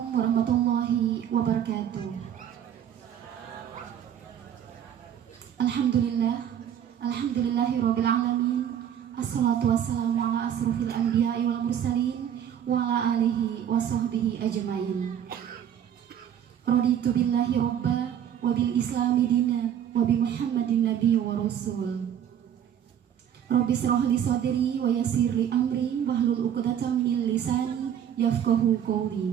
warahmatullahi wabarakatuh. Alhamdulillahirabbil alamin. Assalatu wassalamu ala asrofil anbiya'i wal mursalin wa ala alihi wa sahbihi ajmain. Raditu billahi robba wa bil islami dina wa bi muhammadin nabi wa rasul. Rabbi shrah li sadri wa yassir li amri wahlul 'uqdatam min lisani yafqahu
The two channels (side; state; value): left; quieter; 9.5 dB